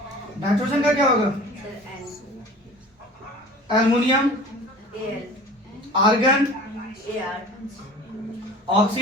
नाइट्रोजन का क्या होगा? Aluminium, argon,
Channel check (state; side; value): normal; both; correlation 0.42